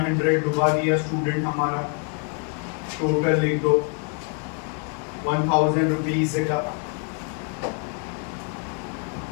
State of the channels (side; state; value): right; quieter; 39.7 dB